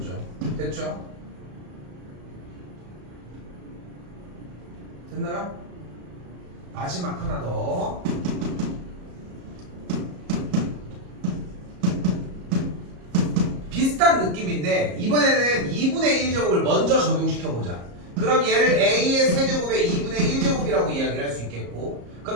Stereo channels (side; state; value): left; late; 34 ms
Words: 됐죠? 됐나요? 마지막 하나 더. 비슷한 느낌인데 이번에는 2분의 1제곱을 먼저 적용시켜보자. 그럼 얘를 A의 세제곱의 2분의 1제곱이라고 이야기를 할 수 있겠고,